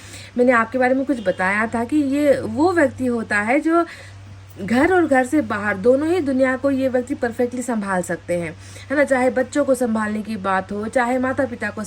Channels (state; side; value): identical; both; correlation 1.00